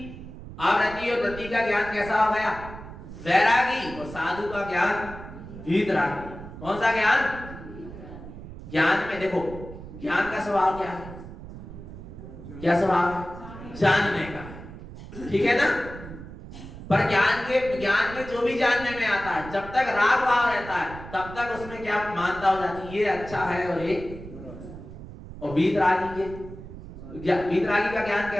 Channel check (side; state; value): right; noise; rumble, 13 dB below the sound